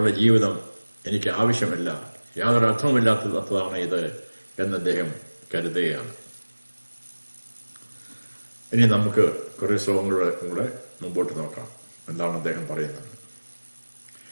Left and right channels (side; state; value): both; inverted; correlation -1.00